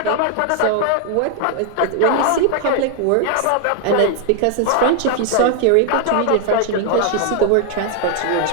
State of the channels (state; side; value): different; both; correlation 0.00